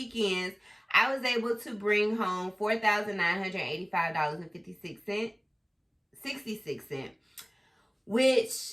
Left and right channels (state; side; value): identical; both; correlation 1.00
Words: I was able to bring home $4,985.66,